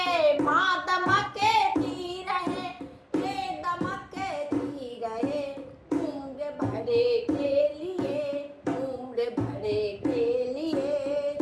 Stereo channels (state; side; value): identical; both; correlation 1.00